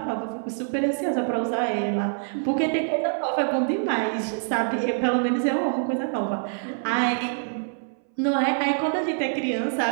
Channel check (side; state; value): left; silent; 60 dB below the other